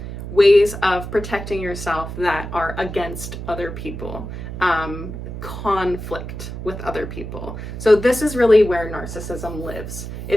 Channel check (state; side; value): noise; right; hum, 8 dB below the sound